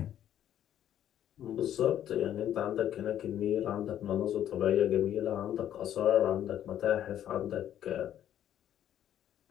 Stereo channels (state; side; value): quieter; right; 10.9 dB